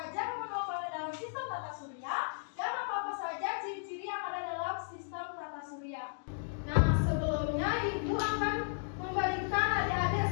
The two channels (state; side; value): silent; right; digital silence